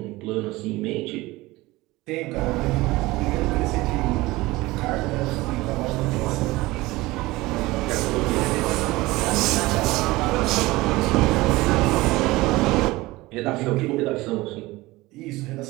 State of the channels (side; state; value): left; quieter; 20.0 dB